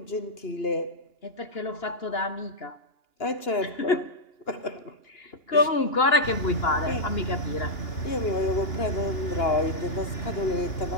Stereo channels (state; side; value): late; right; 2.9 ms